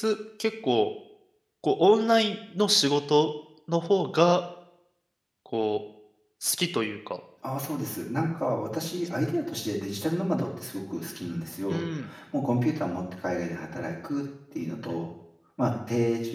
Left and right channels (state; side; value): identical; both; correlation 1.00